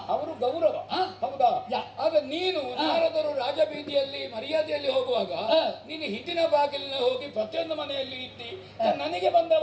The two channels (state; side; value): identical; both; correlation 1.00